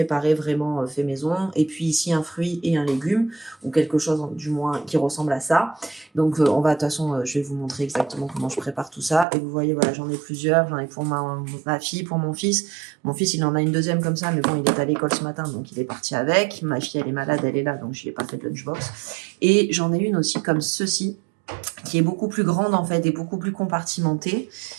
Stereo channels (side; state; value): left; drops out; at 9.2 s